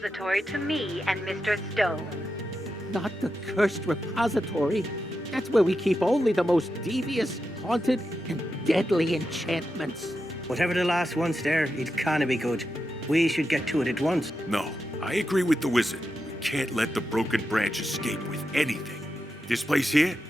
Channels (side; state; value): both; normal; correlation 0.88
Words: to me and Mr. Stone. Not the cursed repository. That's where we keep only the most devious, haunted, and deadly enchantments. Whatever the last one's there, it can't be good. We should get to it at once. No, I agree with the wizard. We can't let the broken branch escape with anything. This place here,